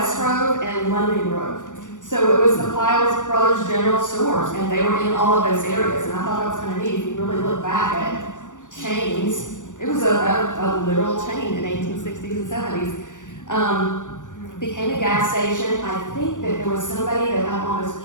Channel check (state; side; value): late; right; 0.87 ms